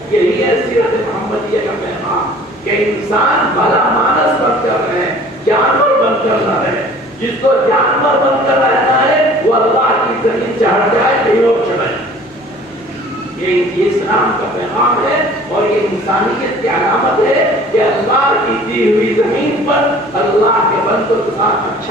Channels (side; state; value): both; normal; correlation 0.49